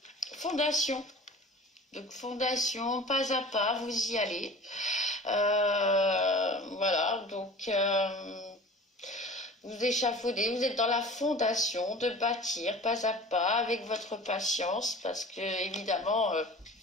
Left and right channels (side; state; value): both; normal; correlation 0.41